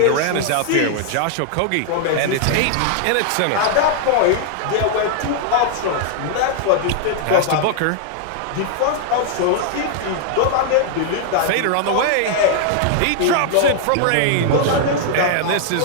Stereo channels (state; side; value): different; both; correlation 0.00